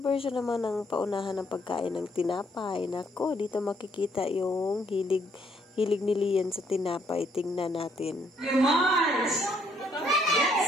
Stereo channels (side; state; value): both; normal; correlation 0.69